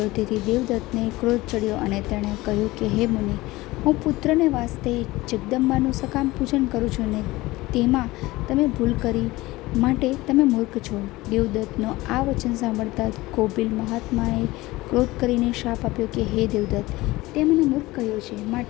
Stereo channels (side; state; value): right; quieter; 19.6 dB